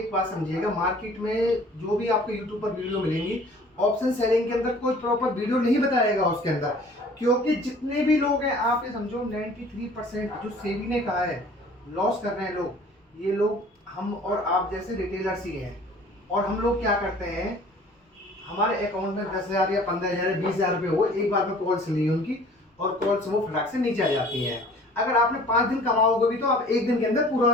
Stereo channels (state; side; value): normal; both; correlation 0.50